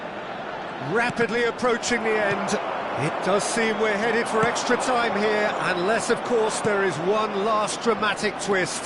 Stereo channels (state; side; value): identical; both; correlation 1.00